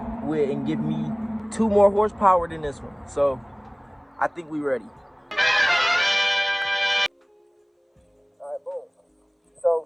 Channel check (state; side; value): identical; both; correlation 1.00